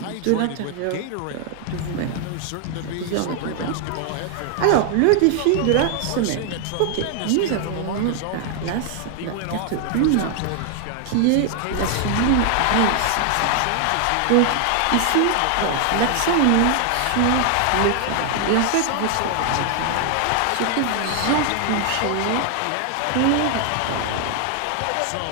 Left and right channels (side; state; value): both; different; correlation 0.00